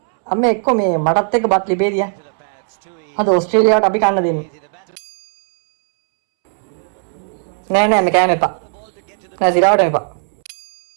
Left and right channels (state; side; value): silent; left; 68 dB below the other